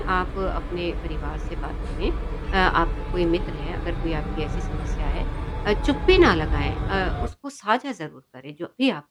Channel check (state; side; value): identical; both; correlation 1.00